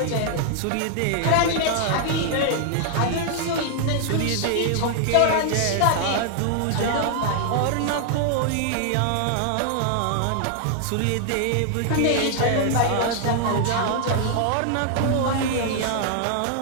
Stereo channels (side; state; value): both; different; correlation 0.00